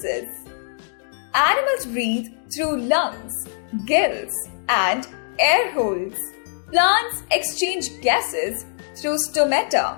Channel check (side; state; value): right; silent; digital silence